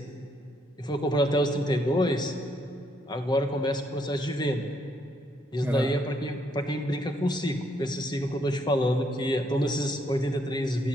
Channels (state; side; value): normal; both; correlation 0.72